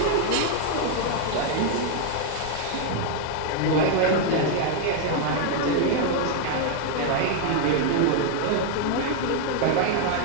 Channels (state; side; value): different; both; correlation 0.00